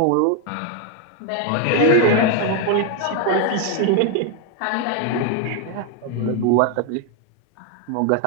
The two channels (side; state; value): both; different; correlation 0.01